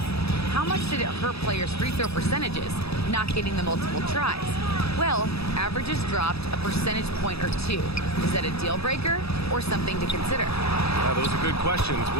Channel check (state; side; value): late; right; 0.78 ms